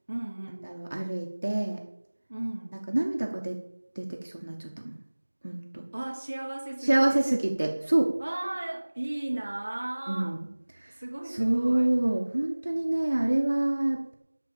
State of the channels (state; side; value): inverted; both; correlation -1.00